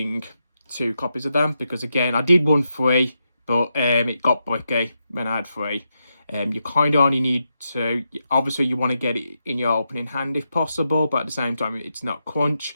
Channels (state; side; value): inverted; both; correlation -0.85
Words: 2 copies of them because, again, I did run 3, but it got bricky when I had 3. You kind of only need to, obviously you want to get it in your opening hand if possible, but at the same time it's not crunch.